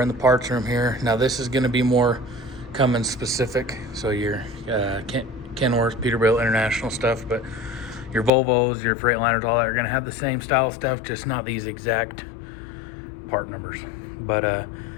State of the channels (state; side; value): drops out; right; at 8.3 s